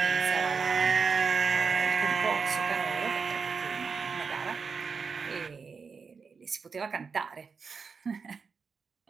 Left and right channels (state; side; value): quieter; left; 5.3 dB